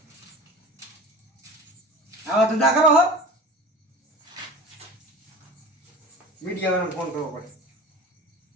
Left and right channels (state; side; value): normal; both; correlation 0.36